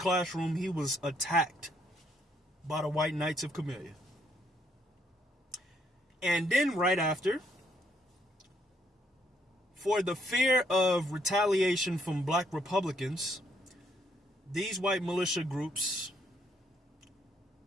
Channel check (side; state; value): both; normal; correlation 0.71